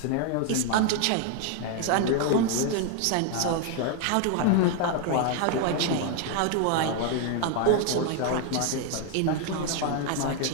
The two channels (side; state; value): both; different; correlation 0.01